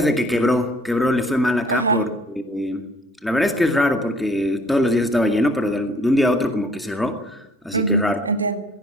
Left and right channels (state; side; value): normal; both; correlation 0.57